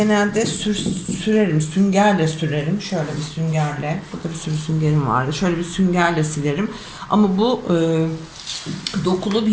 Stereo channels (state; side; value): identical; both; correlation 1.00